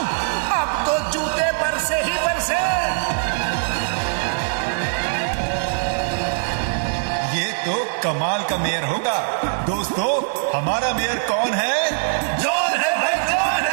अब तो जूते बरसे ही बरसे। ये तो कमाल का मेयर होगा। दोस्तों, हमारा मेयर कौन है? जॉन है भाई, जॉन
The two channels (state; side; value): silent; left; digital silence